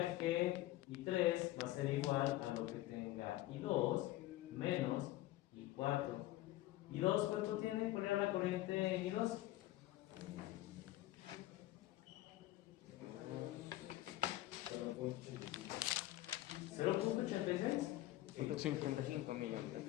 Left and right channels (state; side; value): quieter; right; 16.2 dB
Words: que I3 va a ser igual a lo que tenga I2 menos I4. ¿I2 cuánto tiene? ¿Cuál era la corriente en I2? 0.86. 85 miliamperes.